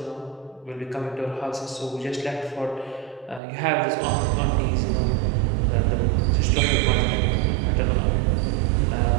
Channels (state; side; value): drops out; left; at 3.4 s